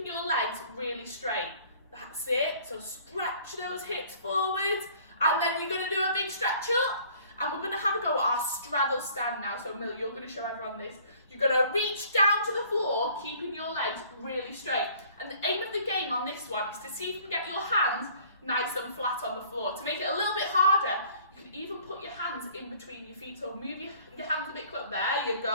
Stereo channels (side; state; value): both; inverted; correlation -0.54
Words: your legs really straight. That's it. So stretch those hips forwards. And then you're going to do a big stretch up. And we're going to have a go at our straddle stand now. So Mill, you're going to show everyone this. You're going to reach down to the floor, keeping your legs really straight. And the aim of the game on this one is to see if you can get your hands nice and flat on the floor. To make it a little bit harder, you can even put your hands in between your feet. So move your hands a bit close. There you